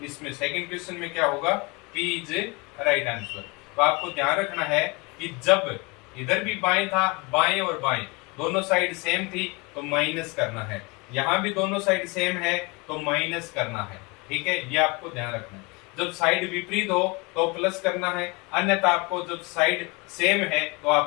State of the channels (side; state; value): right; quieter; 27.2 dB